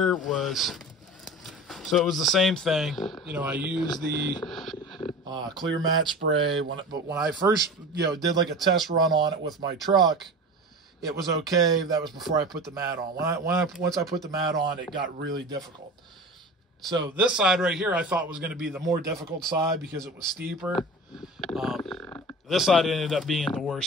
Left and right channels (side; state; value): both; normal; correlation 0.34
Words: was, so it was the same thing. You know, I used the clear matte spray, but when I first, did like a test run on it with my truck, it was okay. That was before I put the mat on. Once I put the mat on, it got really difficult. So this side right here I thought was going to be the more difficult side because it was steeper. This side ended up being the